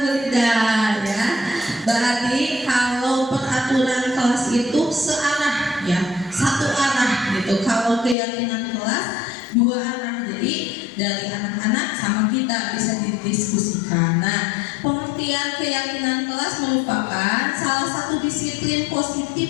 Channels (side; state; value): right; drops out; at 8.2 s